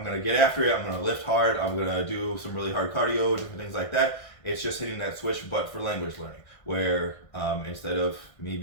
going to get after it. I'm going to lift hard. I'm going to do some really hard cardio, different things like that. It's just hitting that switch, but for language learning, where instead of me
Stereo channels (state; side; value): late; right; 1.5 ms